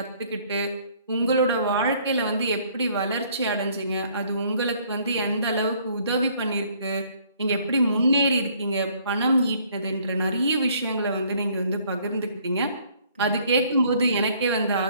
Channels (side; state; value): both; inverted; correlation -0.61